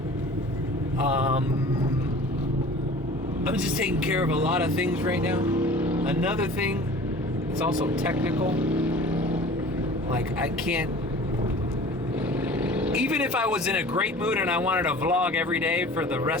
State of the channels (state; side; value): normal; both; correlation 0.43